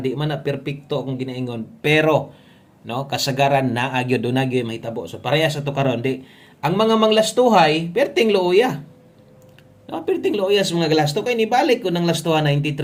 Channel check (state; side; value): identical; both; correlation 1.00